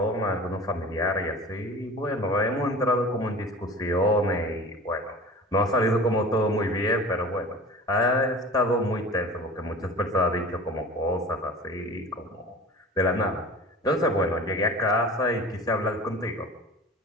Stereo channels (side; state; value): both; normal; correlation 0.39